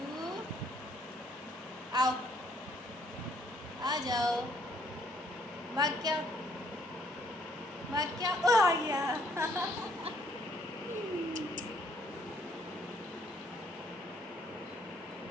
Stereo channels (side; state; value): both; normal; correlation 0.65